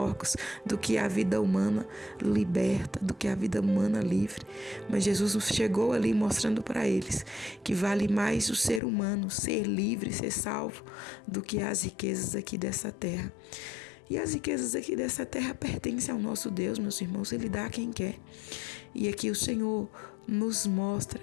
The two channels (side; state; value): right; drops out; at 8.8 s